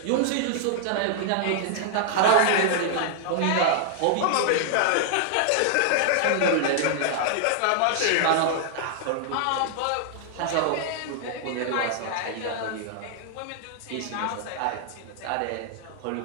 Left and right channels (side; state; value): both; different; correlation 0.00